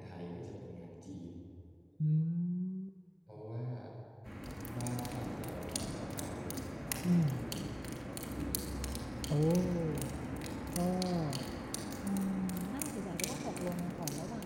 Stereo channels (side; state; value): both; identical; correlation 1.00